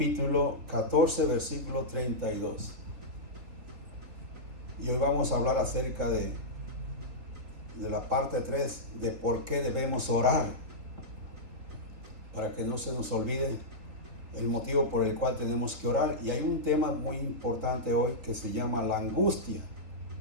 14, versículo 32. Y hoy vamos a hablar acerca de la parte 3, de por qué debemos orar, para que no se nos olvide el motivo por el cual tenemos que orar. Y hay un tema muy importante hoy que se llama la angustia,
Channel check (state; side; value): late; left; 4.0 ms